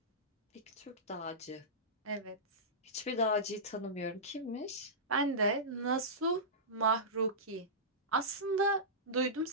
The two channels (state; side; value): normal; both; correlation -0.17